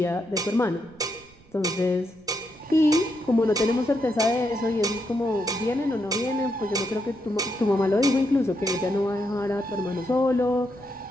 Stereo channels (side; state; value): right; noise; rumble, 27 dB below the sound